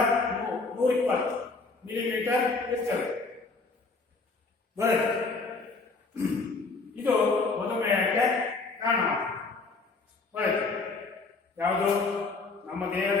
120 ಮಿಲಿಮೀಟರ್ ಇರ್ತದೆ. ಇದು ಮಧುಮೇಹಕ್ಕೆ ಕಾರಣವಾಗುತ್ತದೆ. ಯಾವುದು ನಮ್ಮ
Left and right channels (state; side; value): quieter; right; 3.9 dB